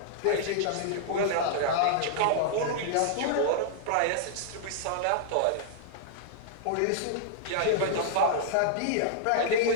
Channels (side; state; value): both; different; correlation -0.01